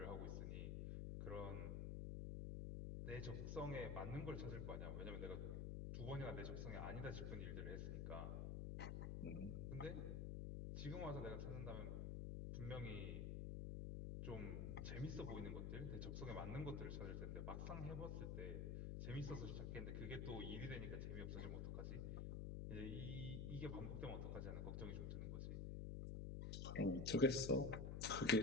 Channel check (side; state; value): left; noise; hum, 1 dB below the sound